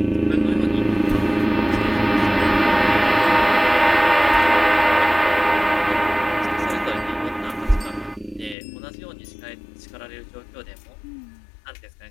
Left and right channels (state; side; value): drops out; right; at 8.6 s